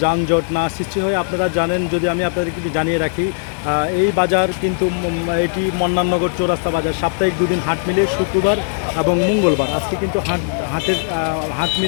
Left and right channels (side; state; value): right; silent; digital silence